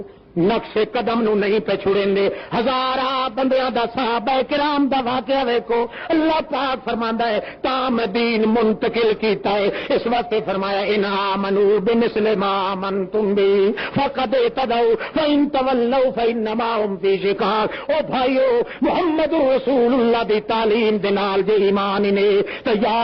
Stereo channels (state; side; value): identical; both; correlation 1.00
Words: نقش قدم نو نہیں پہ چھڑیں دے۔ ہزارہ بندیاں دا صحابہ کرام دا واقعہ ویکھو، اللہ پاک فرماندا ہے تام دین منتقل کیتا ہے، اس واسطے فرمایا ان آمنوا بمثل ما آمنتم بہ فقد اهتدوا فان تولوا فانما هم فی شقاق۔ او بھائیو، محمد رسول اللہ دی تعلیم دے نال جے ایمان نے تو